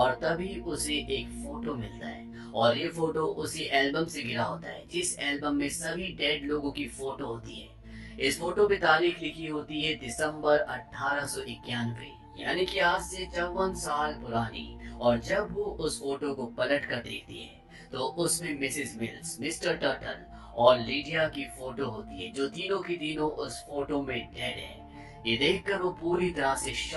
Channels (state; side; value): identical; both; correlation 1.00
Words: तभी उसे एक फोटो मिलता है और ये फोटो उसी एल्बम से गिरा होता है जिस एल्बम में सभी डेड लोगों की फोटो होती है। इस फोटो पे तारीख लिखी होती है दिसंबर 1891, यानी कि आज से 54 साल पुरानी। और जब वो उस फोटो को पलट कर देखती है तो उसमें मिसेस मिल्स, मिस्टर टर्टल और लीडिया की फोटो होती है, जो तीनों की तीनों उस फोटो में डेड है। ये देखकर वो पूरी तरह से